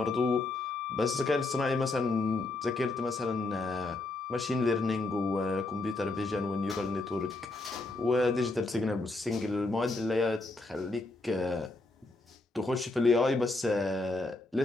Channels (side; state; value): right; quieter; 3.1 dB